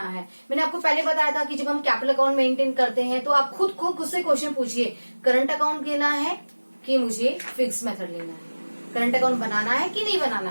है। मैंने आपको पहले बताया था कि जब हम कैपिटल अकाउंट मेंटेन करते हैं तो आप खुद से क्वेश्चन पूछिए, करंट अकाउंट लेना है कि मुझे फिक्स मेथड लेना है, करंट अकाउंट बनाना है कि नहीं बनाना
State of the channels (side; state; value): both; inverted; correlation -1.00